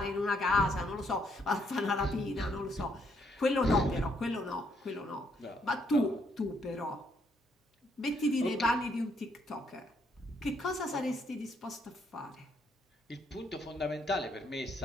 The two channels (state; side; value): normal; both; correlation 0.72